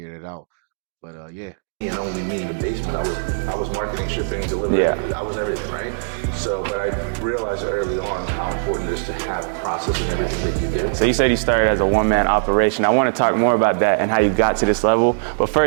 it out. But yeah. And only me in the basement. I was marketing, shipping, delivery. Yeah. I was everything, right? So, but I realized early on how important it is to have process in everything that you do. So you said you started as a one-man operation. I want to talk more about that and how you got to this level. But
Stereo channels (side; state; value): left; silent; digital silence